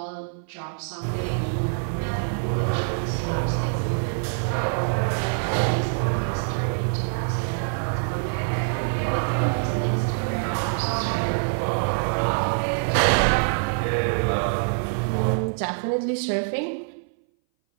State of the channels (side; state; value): left; silent; 59 dB below the other